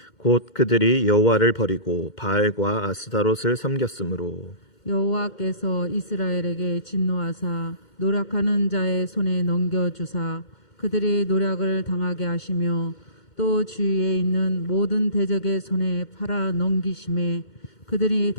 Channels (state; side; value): late; right; 2.1 ms